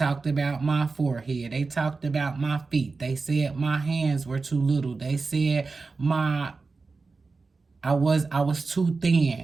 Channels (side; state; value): left; quieter; 4.1 dB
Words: about my forehead. They talked about my feet. They said my hands were too little. They said I was too